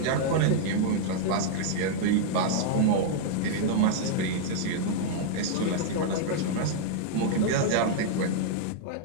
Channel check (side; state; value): both; different; correlation -0.01